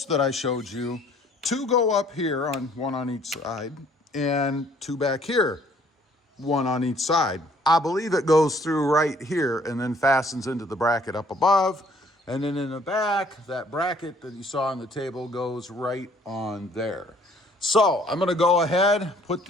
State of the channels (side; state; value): both; normal; correlation 0.60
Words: that I showed you, 2 go up here, one on each side, and 2 back here, 1 on each side. I believe it goes through right here and then fastens into the bracket up above. And then in the back, that bracket that you saw on the table goes right on there. So I'm gonna go ahead, put